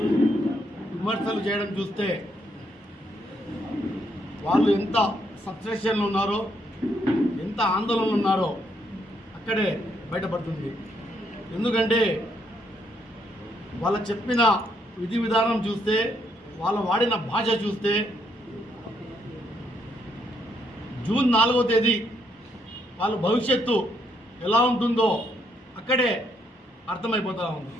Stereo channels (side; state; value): both; normal; correlation 0.74